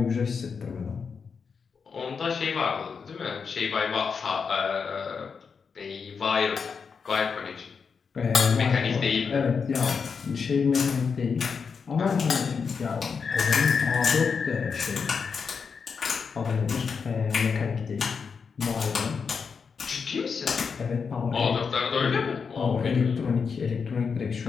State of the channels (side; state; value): right; quieter; 5.7 dB